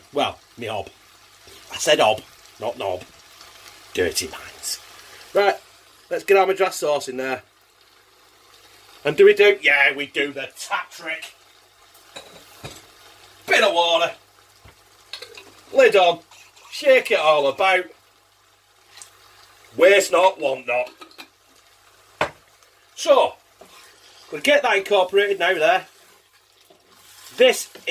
Well, my hob. I said hob, not knob. Dirty minds. Right, let's get our madras sauce in there. And do we do? Yeah, we do the tap trick. Bit of water. Lid on. Shake it all about. Waste not, want not. So, we'll get that incorporated now there. This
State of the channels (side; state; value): both; identical; correlation 1.00